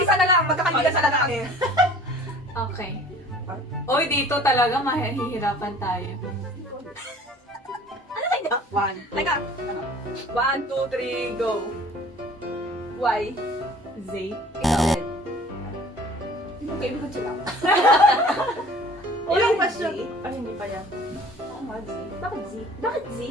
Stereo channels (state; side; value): normal; both; correlation 0.49